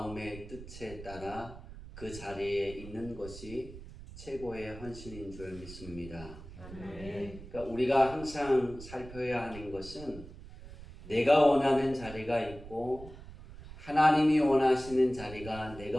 뜻에 따라 그 자리에 있는 것이 최고의 헌신인 줄 믿습니다. 그러니까 우리가 항상 살펴야 하는 것은 내가 원하는 자리가 있고 하나님이 원하시는 자리가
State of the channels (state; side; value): noise; right; rumble, 15 dB below the sound